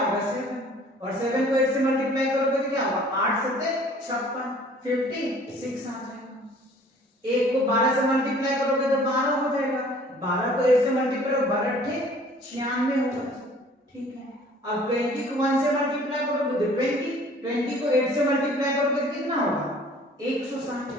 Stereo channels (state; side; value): normal; both; correlation 0.52